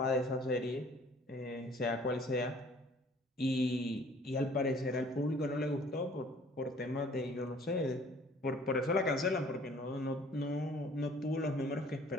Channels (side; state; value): both; normal; correlation 0.54